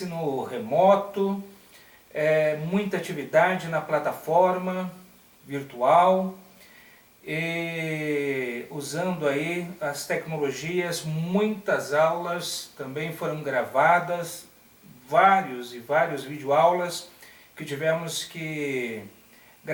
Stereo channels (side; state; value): both; identical; correlation 1.00